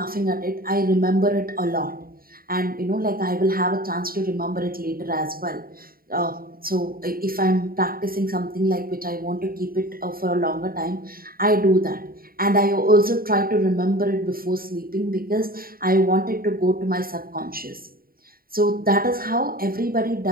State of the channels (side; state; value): left; late; 0.43 ms